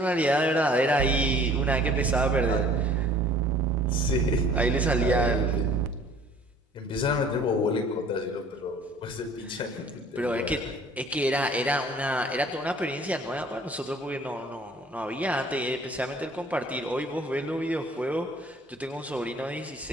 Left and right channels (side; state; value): both; normal; correlation 0.53